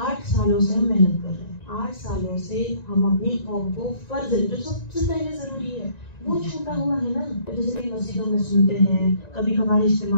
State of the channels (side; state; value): right; late; 1.9 ms